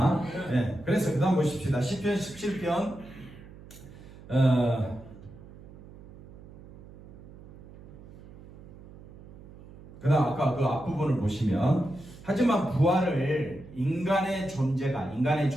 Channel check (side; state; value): right; noise; hum, 19 dB below the sound